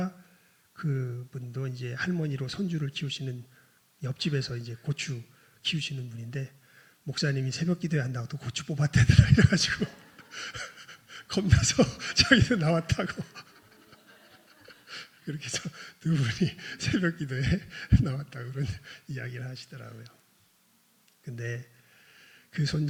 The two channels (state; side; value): identical; both; correlation 1.00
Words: 그분도 이제 할머니로 손주를 키우시는 옆집에서 이제 고추 키우시는 분인데 목사님이 새벽 기도에 한다고 또 고추 뽑았대더라 이래가지고 겁나서 자기도 나왔다고 그렇게 해서 두 분이 새벽 기도에 나왔다고 그런 이야기를 하시더라고요. 근데 그